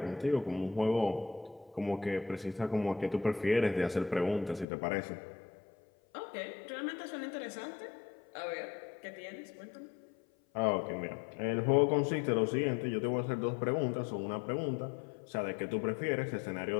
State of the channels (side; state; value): right; drops out; at 4.7 s